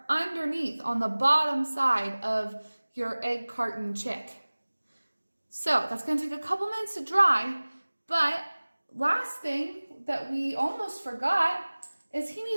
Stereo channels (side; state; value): both; inverted; correlation -1.00